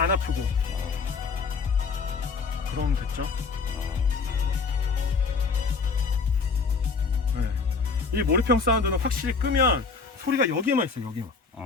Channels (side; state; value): right; quieter; 4.8 dB